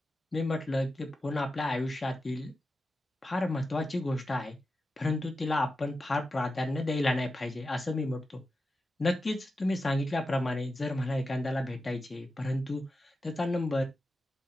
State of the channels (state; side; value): normal; both; correlation 0.90